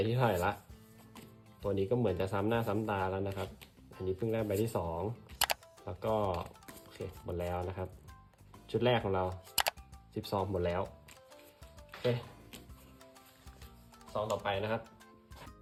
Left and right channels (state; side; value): identical; both; correlation 1.00